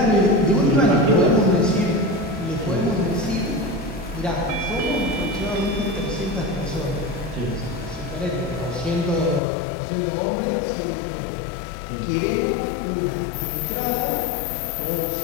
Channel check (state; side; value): drops out; right; at 9.4 s